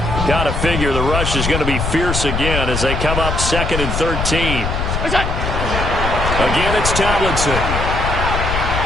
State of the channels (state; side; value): noise; left; rumble, 2 dB below the sound